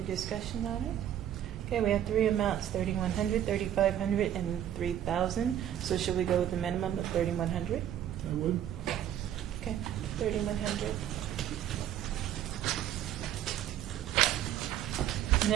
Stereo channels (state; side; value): quieter; left; 10.9 dB